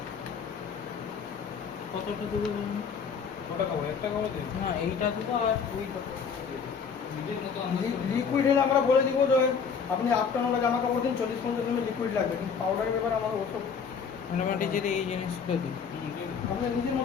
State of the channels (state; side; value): quieter; right; 6.2 dB